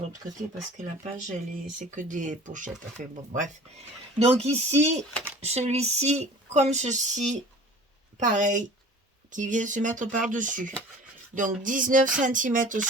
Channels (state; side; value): normal; both; correlation 0.44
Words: côté parce que la page, c'est que des pochettes. Enfin bon, bref. Donc ici, celui-ci, comme ceci, pareil, qui vient se mettre par-dessus. Donc 19 cm